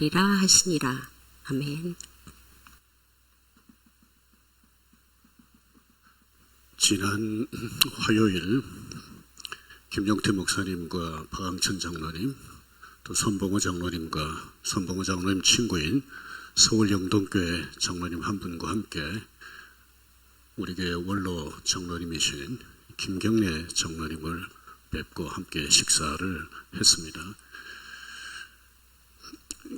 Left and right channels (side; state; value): both; identical; correlation 1.00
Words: 하시니라. 아멘. 지난 화요일 김용태 목사님과 박항천 장로님, 또 손봉호 장로님과 손봉호 장로님 친구인 서울 영동교회 장로님 한 분과 함께 우리 교회 원로 장로님이신 김경래 장로님을 뵙고 함께 식사를 했습니다.